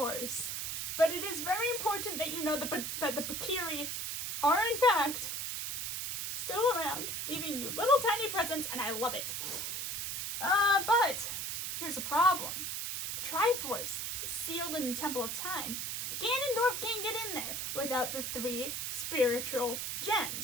But it is very important that you know that the Kokiri are in fact still around, leaving you little tiny presents, and I love it. But here's the problem. The Triforce is sealed in the Temple of Time, and Ganondorf can't get in there without the 3 spiritual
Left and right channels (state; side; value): noise; right; hiss, 3 dB below the sound